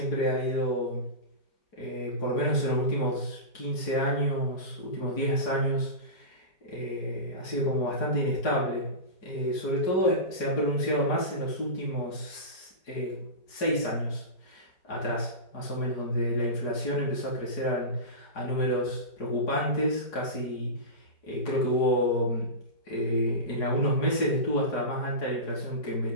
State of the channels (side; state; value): right; late; 4.8 ms